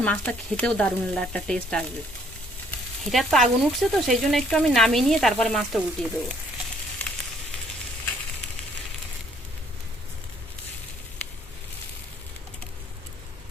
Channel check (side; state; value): both; normal; correlation 0.64